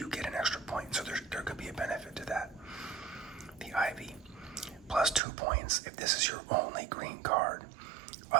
get an extra point. So there could be a benefit to that. The ivy, plus 2 points if this is your only green card.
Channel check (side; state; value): left; drops out; at 5.2 s